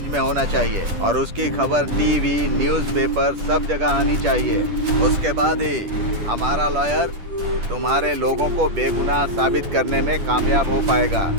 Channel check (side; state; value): left; late; 10 ms